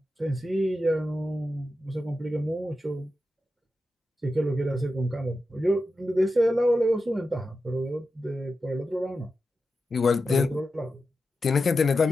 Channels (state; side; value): normal; both; correlation 0.90